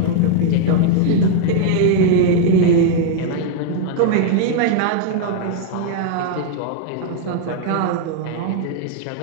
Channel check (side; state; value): both; different; correlation 0.00